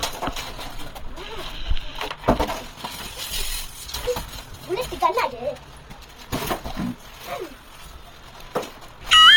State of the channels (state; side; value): identical; both; correlation 1.00